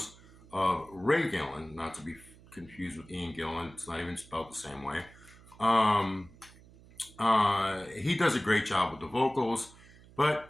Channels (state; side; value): noise; right; hum, 23 dB below the sound